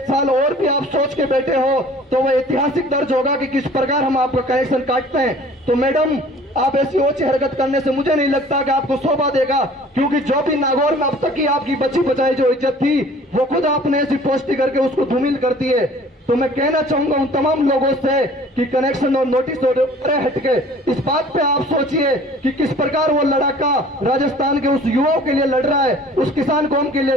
साल और भी आप सोच के बैठे हो तो वह ऐतिहासिक दर्ज होगा कि किस प्रकार हम आपका कनेक्शन काटते हैं। तो मैडम, आप ऐसी ओछी हरकत करने से मुझे नहीं लगता कि आपको शोभा देगा, क्योंकि जो भी नागौर में अब तक की आपकी बची बचाई जो इज्जत थी वो खुद आपने ऐसी पोस्टी करके उसको धूमिल कर दी है। तो मैं कहना चाहूंगा उन तमाम लोगों से कि कनेक्शन और नोटिस और हटके इस बात पे आप सोचिए कि किस प्रकार वो लड़ाका राजस्थान के उस युवाओं के लिए लड़ रहा है, उस किसान कौम के लिए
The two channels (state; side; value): normal; both; correlation 0.50